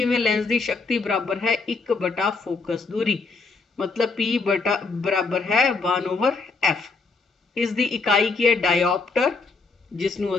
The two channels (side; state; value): right; quieter; 4.1 dB